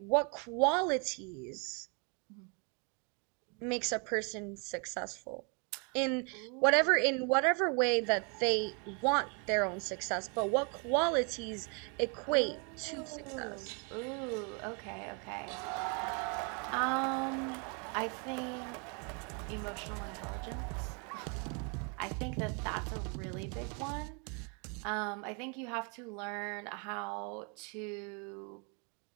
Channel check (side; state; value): left; quieter; 35.6 dB